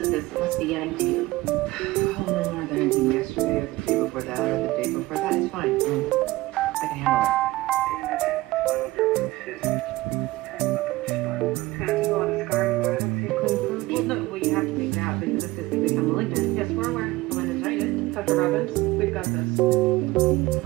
this. It must be getting to you. Oh, no more than anything yesterday or the day before that or the day before that. It's fine. I can handle it. Well, you have to take it out because if this can become malignant. Yes, we're aware. Meningitis. Dr. Robbins, we've got this.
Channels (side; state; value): left; quieter; 19.1 dB